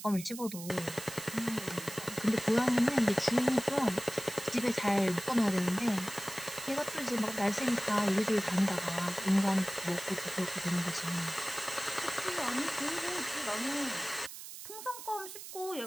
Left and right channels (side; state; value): right; noise; hiss, 11 dB below the sound